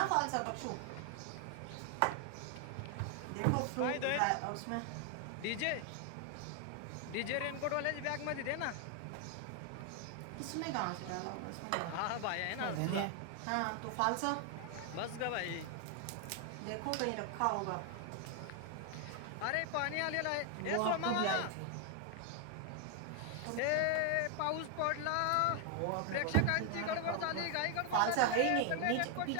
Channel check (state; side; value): different; both; correlation 0.00